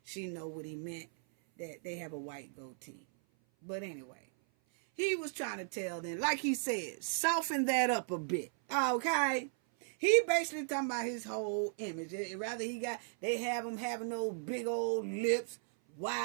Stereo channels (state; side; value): silent; left; 54 dB below the other